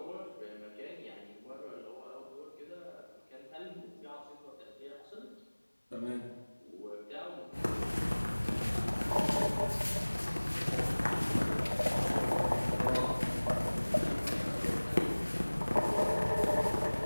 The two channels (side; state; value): both; inverted; correlation -1.00